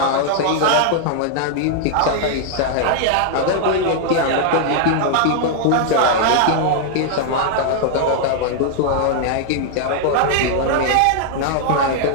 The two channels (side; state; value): both; different; correlation 0.00